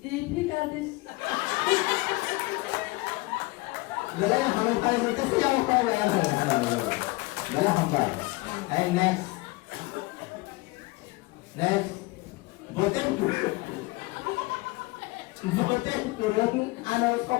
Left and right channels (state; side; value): quieter; right; 22.8 dB